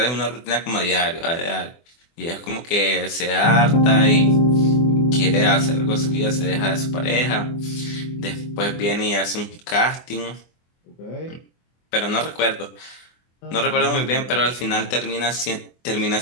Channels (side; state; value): right; late; 24 ms